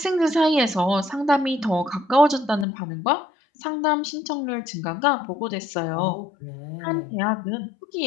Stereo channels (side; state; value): right; drops out; at 2.7 s